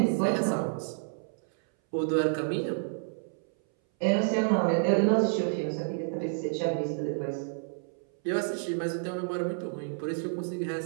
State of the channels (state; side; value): silent; left; 58 dB below the other